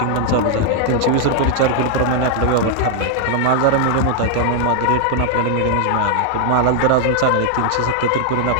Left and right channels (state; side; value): different; both; correlation 0.00